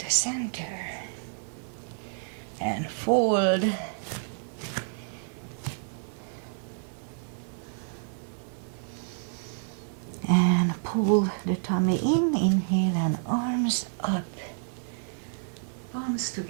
center. And fold. And pull the tummy in, inhale and arms up. Palms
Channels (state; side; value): silent; left; digital silence